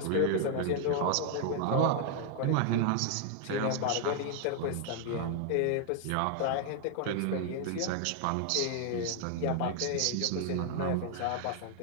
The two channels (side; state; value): both; different; correlation 0.00